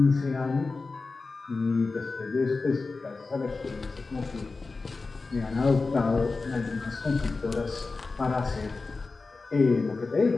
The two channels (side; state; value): right; quieter; 3.9 dB